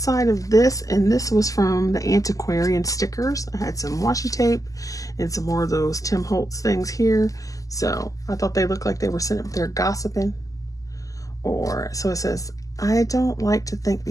of this, and this was from the Antiquarian stickers. I had some washi tape and some more of those Tim Holtz things here. So I thought they looked like they were sitting up there gossiping. Or, so it says, I don't like to think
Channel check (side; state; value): right; late; 0.17 ms